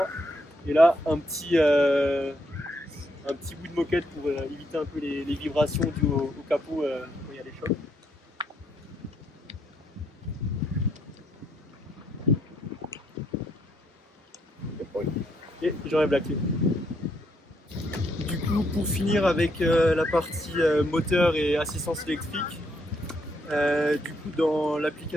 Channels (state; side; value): normal; both; correlation 0.74